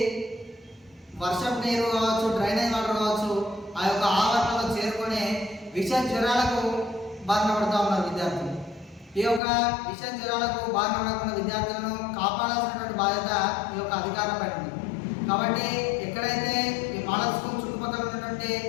వర్షపు నీరు కావచ్చు, డ్రైనేజ్ వాటర్ కావచ్చు, ఆ యొక్క ఆవరణలో చేరుకొని విష జ్వరాలకు బారిన పడుతూ ఉన్నారు విద్యార్థులు. ఈ యొక్క విష జ్వరాలకు బారిన పడకుండా విద్యార్థులను కాపాడాల్సినటువంటి బాధ్యత ఈ యొక్క అధికారులపై ఉంది. కాబట్టి ఎక్కడైతే ఈ మోడల్ స్కూల్ చుట్టుపక్కల ఉన్నటువంటి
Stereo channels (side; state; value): right; drops out; at 9.4 s